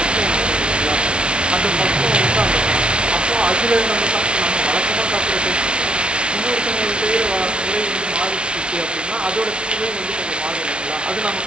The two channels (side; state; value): left; late; 0.057 ms